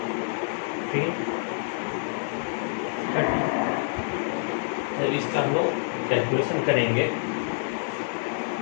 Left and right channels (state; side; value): silent; right; digital silence